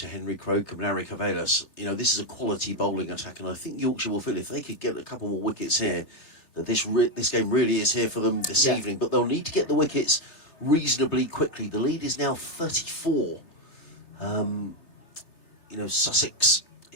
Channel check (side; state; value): right; late; 3.4 ms